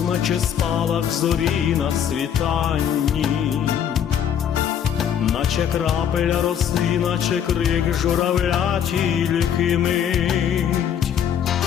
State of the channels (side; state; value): right; quieter; 8.9 dB